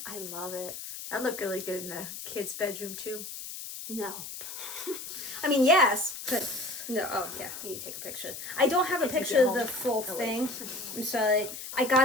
I love it. That looked really good in a kid's bedroom too. No. I mean, yes, but no. Oh, yeah, you need to take a picture. I don't have a picture of the full thing. I'm sorry. I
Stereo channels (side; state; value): left; noise; hiss, 9 dB below the sound